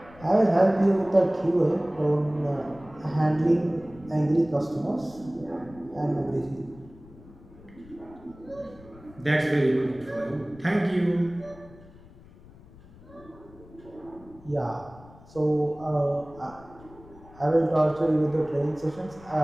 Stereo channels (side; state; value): left; noise; rumble, 22 dB below the sound